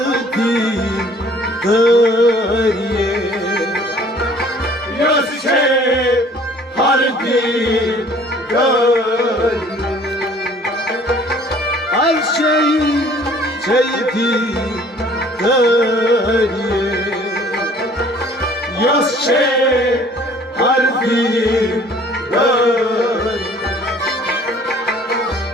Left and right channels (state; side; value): normal; both; correlation 0.54